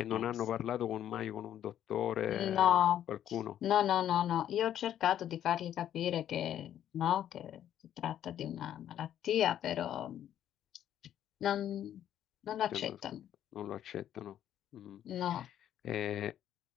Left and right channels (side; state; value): right; quieter; 10.8 dB